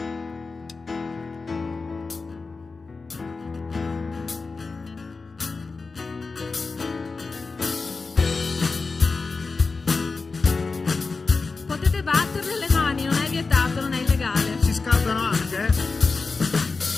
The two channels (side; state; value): right; quieter; 4.1 dB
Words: Potete batterle le mani, non è vietato, non è illegale. Si scaldano anche,